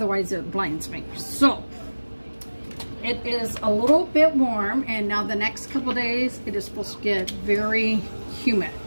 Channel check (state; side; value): inverted; both; correlation -1.00